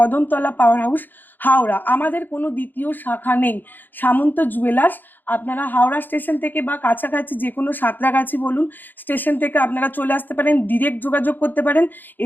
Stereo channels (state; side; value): late; right; 0.090 ms